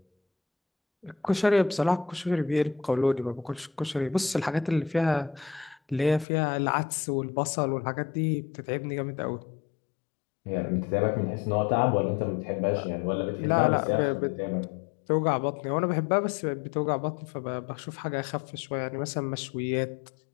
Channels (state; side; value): drops out; right; at 6.2 s